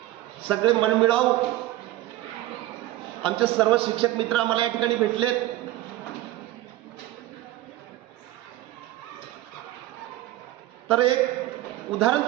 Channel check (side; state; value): left; quieter; 15.7 dB